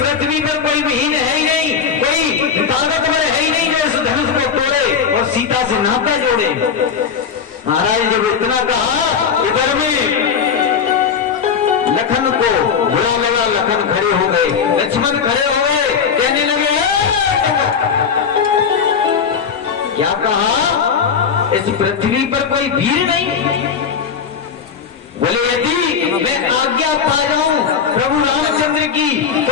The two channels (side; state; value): right; quieter; 6.6 dB